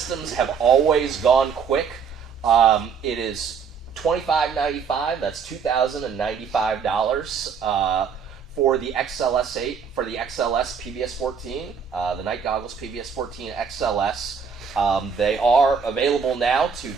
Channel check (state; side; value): quieter; left; 6.3 dB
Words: have always gone quick. It is $25.95. That's $2,095 for the XLS8 for the XLS PVS-14, the Night Goggles PVS-14 XLS. They are available now to